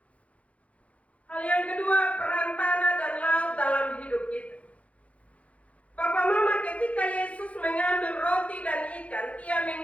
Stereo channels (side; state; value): right; late; 0.065 ms